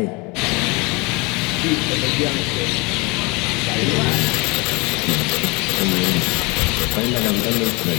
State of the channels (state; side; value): quieter; right; 27.2 dB